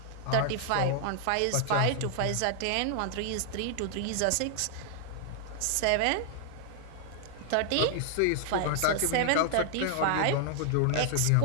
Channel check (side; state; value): both; different; correlation 0.00